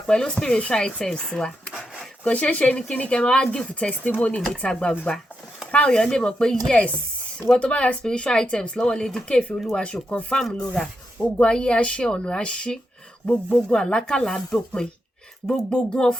pẹ̀lú spiritual items wa kò ṣeé ṣe ní kíní kẹ́ máa wá give testimony níta gbangba káwọn èèyàn lè mọ̀ pé yes ìwọ tó bá ra spiritual items lọ́wọ́ Lady K Ìfẹ́ Olúwaṣò confam ló ra ogun ayé àṣẹ ọ̀nà àṣí gbogbo ogun àlákàlà àdópin gbogbo ogun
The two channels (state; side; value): normal; both; correlation 0.84